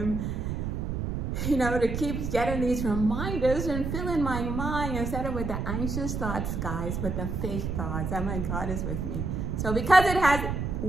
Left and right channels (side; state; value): right; noise; rumble, 2 dB below the sound